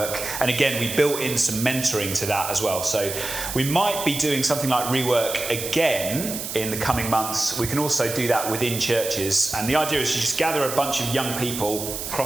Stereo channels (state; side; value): noise; right; hiss, 6 dB below the sound